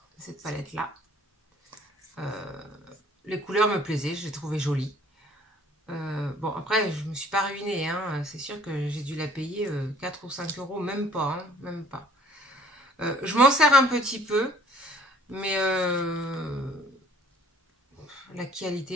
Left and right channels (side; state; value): both; normal; correlation 0.55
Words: Cette palette-là. Les couleurs me plaisaient, je les trouvais jolies. Bon, après, je me suis pas ruinée, hein. C'est sûr que j'ai dû la payer 4 ou 5 €, même pas, hein, même pas. Je m'en sers un petit peu, mais la